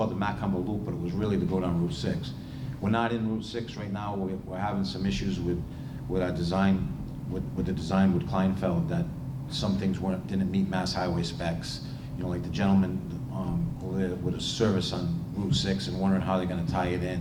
the Macumber Loop, but it was really to go down Route 6. We're not in Route 6 right now. We're having some issues with our design, with the design with Kleinfeld, that some things didn't meet Mass Highway specs. Like the gentleman with a service on Route 6 and wondering how they're going to tie it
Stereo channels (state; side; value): identical; both; correlation 1.00